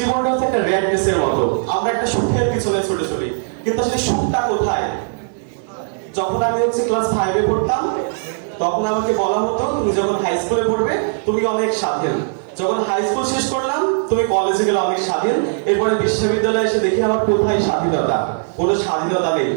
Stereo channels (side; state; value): left; silent; 60 dB below the other